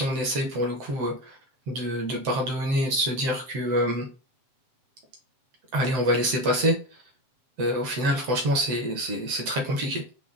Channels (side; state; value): left; late; 7.8 ms